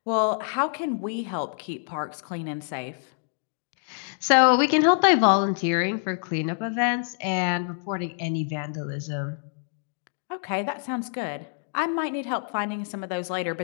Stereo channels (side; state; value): right; silent; digital silence